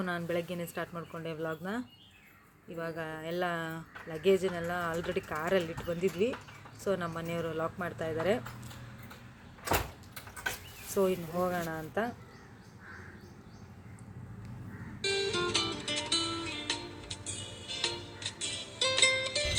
ನಾನು ಬೆಳಗ್ಗೆನೇ ಸ್ಟಾರ್ಟ್ ಮಾಡಿಕೊಂಡೆ ವ್ಲಾಗ್ನ. ಇವಾಗ ಎಲ್ಲ ಲಗೇಜನ್ನೆಲ್ಲ ಆಲ್ರೆಡಿ ಕಾರಲ್ಲಿ ಇಟ್ಟು ಬಂದಿದ್ವಿ. ಸೊ ನಮ್ಮ ಮನೆಯವರು ಲಾಕ್ ಮಾಡ್ತಾ ಇದ್ದಾರೆ. ಸೊ ಇನ್ನು ಹೋಗೋಣ ಅಂತ.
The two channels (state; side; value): identical; both; correlation 1.00